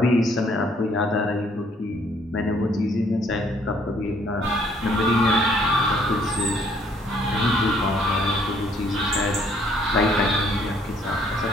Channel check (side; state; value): both; normal; correlation 0.64